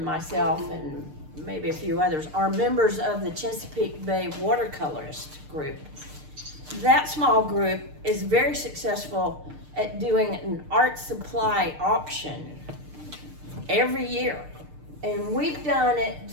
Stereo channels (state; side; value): late; left; 6.6 ms